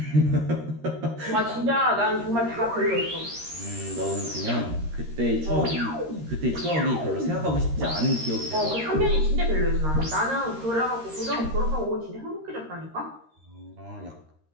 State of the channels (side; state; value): left; late; 13 ms